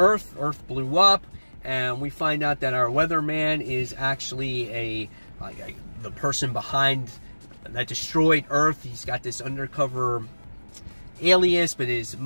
Earth blew up. And we find out that our weatherman is actually the person behind that destroyed Earth. He's got this undercover alias, but his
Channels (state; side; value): inverted; both; correlation -1.00